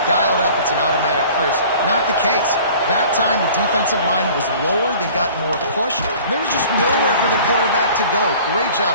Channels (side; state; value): both; inverted; correlation -0.47